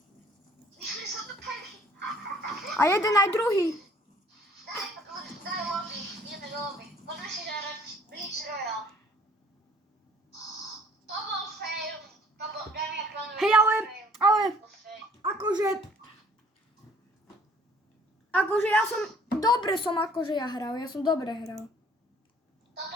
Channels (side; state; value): both; normal; correlation 0.57